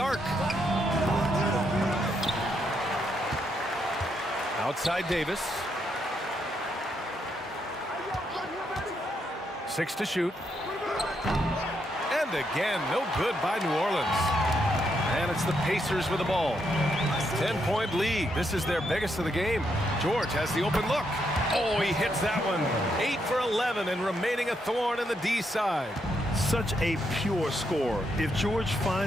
Outside Davis. 6 to shoot. And again, no good by New Orleans. And it's the Pacers with the ball. 10-point lead. This is their biggest of the game. George has the open look. Oh, he hits that one. 8 for 11 and remaining a thorn in the D side. Such a pure score. If George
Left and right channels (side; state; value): both; normal; correlation 0.78